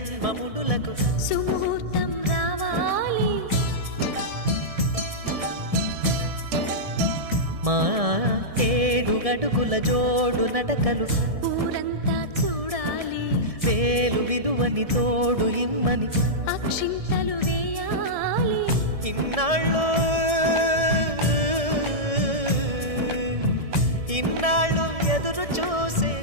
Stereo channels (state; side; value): late; left; 1.7 ms